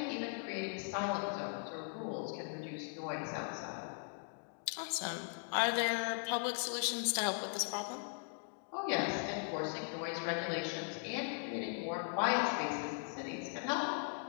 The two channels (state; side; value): silent; right; 52 dB below the other